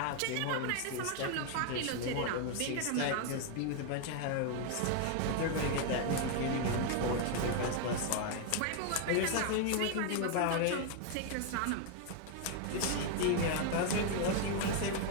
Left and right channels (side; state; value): both; different; correlation 0.01